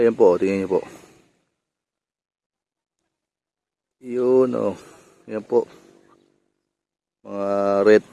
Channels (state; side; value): identical; both; correlation 1.00